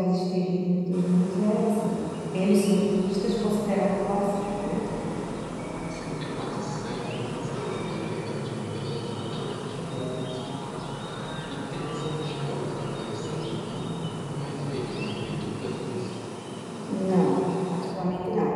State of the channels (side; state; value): both; identical; correlation 1.00